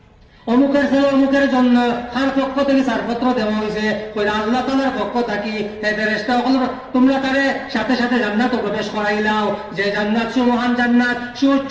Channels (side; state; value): both; identical; correlation 1.00